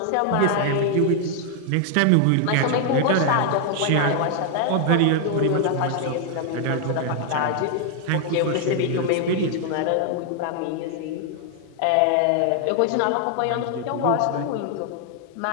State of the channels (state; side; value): different; both; correlation 0.00